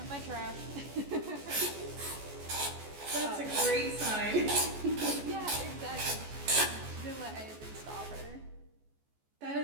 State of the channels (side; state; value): left; late; 14 ms